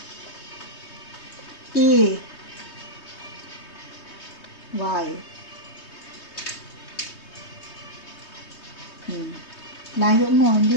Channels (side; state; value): right; late; 3.2 ms